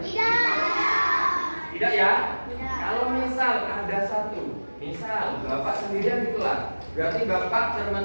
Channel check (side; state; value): both; inverted; correlation -1.00